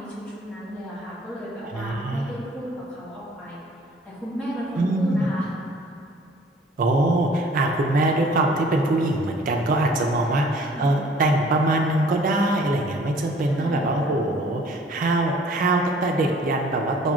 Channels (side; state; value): both; normal; correlation 0.54